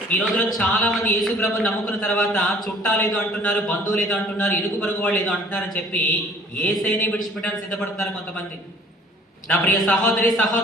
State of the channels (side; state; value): both; normal; correlation 0.52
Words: ఈ రోజులో చాలా మంది యేసు ప్రభుని నమ్ముకున్న తర్వాత చుట్టాలు ఏదో అంటున్నారు, బంధువులు ఏదో అంటున్నారు, ఇరుగు పొరుగు వాళ్ళు ఏదో అంటున్నారని చెప్పి యేసయ్యనే విడిచిపెట్టడానికి సిద్ధపడుతున్నారు కొంతమంది. నా ప్రియ సహోదరి,